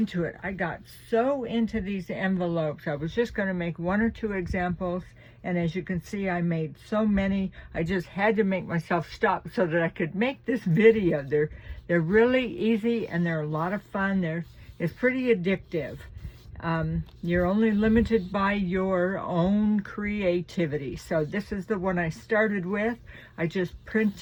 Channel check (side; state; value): both; identical; correlation 1.00